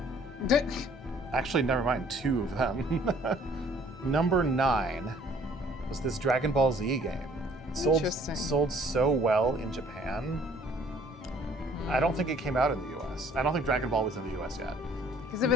Actually, never mind, 2 of them. Number 9 was this Dragon Ball Z game. It sold so well in Japan. I don't think it came out in the US. I don't think Dragon Ball was in the US yet. Because if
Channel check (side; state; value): both; normal; correlation 0.57